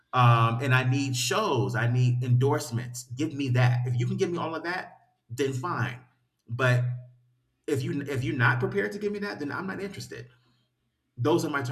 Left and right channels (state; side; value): identical; both; correlation 1.00